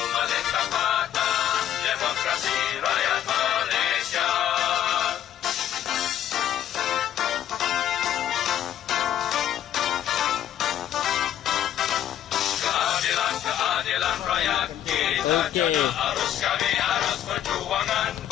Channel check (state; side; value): quieter; right; 11.1 dB